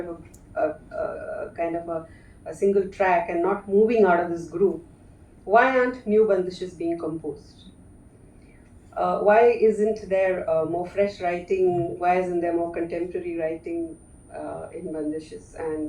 of a single track and not moving out of this groove, why aren't new bandishes being composed? Why isn't there more fresh writing? Why isn't there more contemporary writing in bandishes?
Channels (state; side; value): identical; both; correlation 1.00